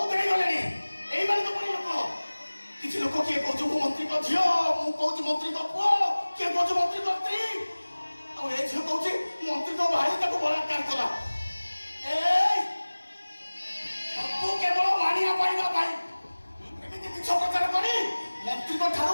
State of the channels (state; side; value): inverted; both; correlation -1.00